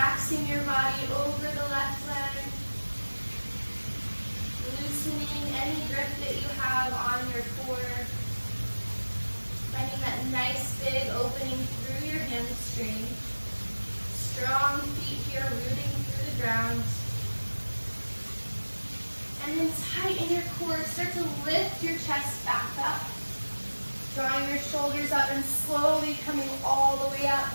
your body over the left leg. Loosening any grip that you have on your core. Finding that nice big opening through your hamstring. Strong feet here rooting through the ground. And then tighten your core. Start to lift your chest back up. Drawing your shoulders up and slowly coming all the way up.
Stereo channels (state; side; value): inverted; both; correlation -1.00